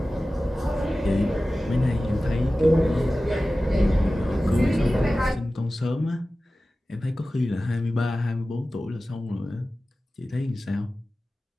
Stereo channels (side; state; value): both; normal; correlation 0.96